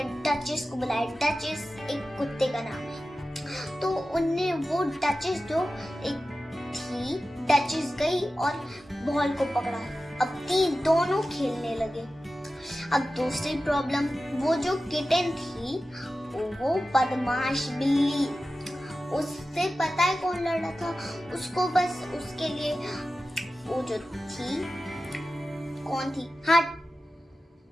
डचेस को बुलाया। डचेस एक कुत्ते का नाम है। तो उनने वो डचेस जो एक थी, डचेस गई और बॉल को पकड़ा। अब दोनों खेलने लगे। अब दूसरी प्रॉब्लम, वो जो किटन थी वो बदमाश बिल्ली, उससे पता है कौन लड़ रहा था, उसको बस उसके लिए वो जो थी, कौन थी, हाँ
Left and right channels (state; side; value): normal; both; correlation 0.94